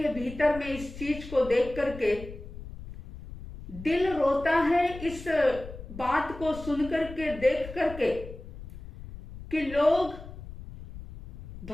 भीतर में इस चीज को देख करके। दिल रोता है इस बात को सुन करके, देख करके, कि लोग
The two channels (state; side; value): noise; left; rumble, 13 dB below the sound